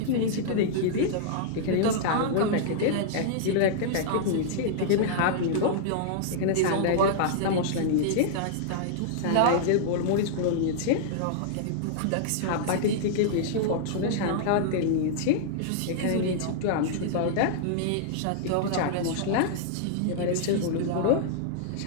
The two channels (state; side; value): different; both; correlation -0.01